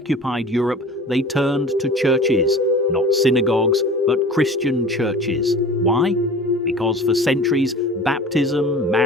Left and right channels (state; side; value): normal; both; correlation 0.39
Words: Europe, they turned to churches, not synagogues, but Christian churches. Why? Because for centuries, baptism,